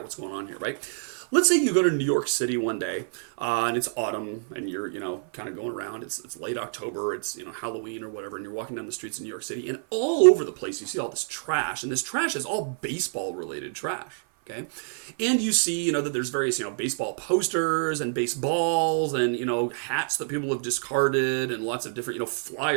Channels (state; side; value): silent; left; 55 dB below the other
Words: what's going on here, right? Let's say you go to New York City one day, and it's autumn, and you're, kind of going around. It's late October, it's, Halloween or whatever, and you're walking down the streets of New York City, and all over the place you see all this trash, and this trash is all baseball-related trash. Okay, and you see, that there's various, baseball posters and baseballs and, hats that people have discarded and lots of different,